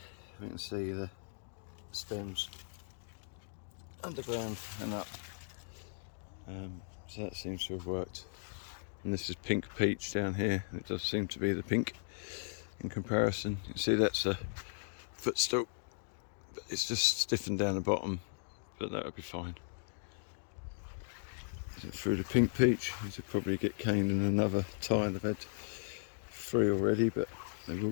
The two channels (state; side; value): silent; right; digital silence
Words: we can see the stems underground and up, so that seems to have worked. And this is pink peach down here, and it does seem to be the pink in comparison. You can see that's a footstool, but it's just stiffened down the bottom, but that would be fine. Through the pink peach, these will probably get caned in another tile. I've had 3 already, but they will